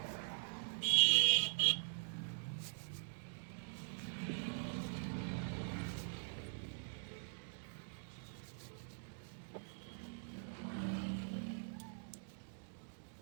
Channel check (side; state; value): left; silent; digital silence